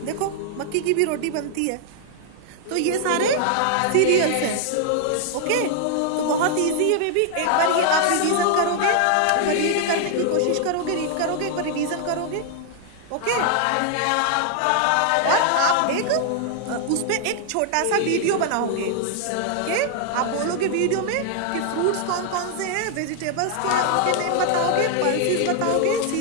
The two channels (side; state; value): both; different; correlation 0.00